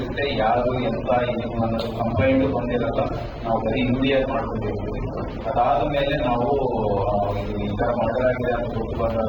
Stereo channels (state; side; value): identical; both; correlation 1.00